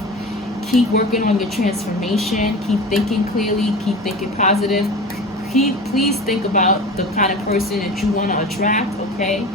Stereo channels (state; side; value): normal; both; correlation 0.33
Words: Keep working on your transformation. Keep thinking clearly. Keep thinking positive. Please think about the kind of person that you want to attract, okay?